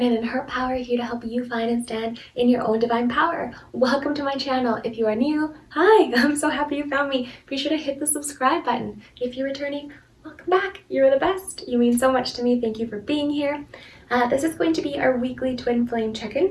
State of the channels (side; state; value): both; identical; correlation 1.00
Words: and her power here to help you find and stand in your own divine power. Welcome to my channel. If you are new, hi, I'm so happy you found me. Be sure to hit the subscribe button. If you're returning, welcome back. You're the best. You mean so much to me. Thank you for being here. This is going to be our weekly twin flame check-in,